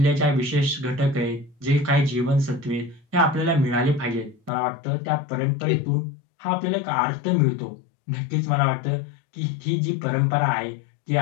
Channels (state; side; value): drops out; right; at 4.5 s